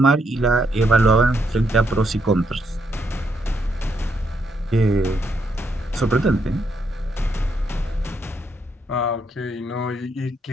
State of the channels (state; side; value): normal; both; correlation 0.77